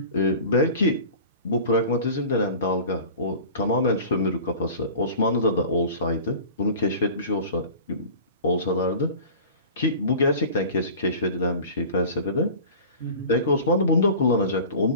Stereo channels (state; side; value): inverted; both; correlation -0.39